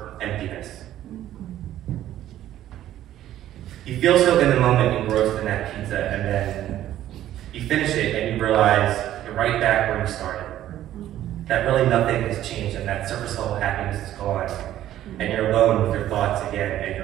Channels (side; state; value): left; quieter; 12.7 dB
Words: emptiness. You feel so in the moment engrossed in that pizza, and then you finish it and you realize you're right back where you started. That really nothing has changed, and that surface level happiness is gone, and you're alone with your thoughts again, and